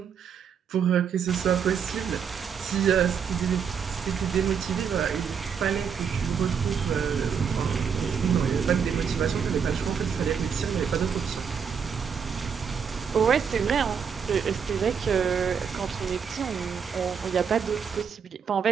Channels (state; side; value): quieter; left; 6.9 dB